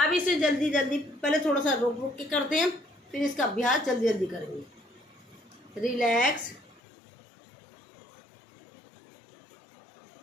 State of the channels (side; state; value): right; drops out; at 6.8 s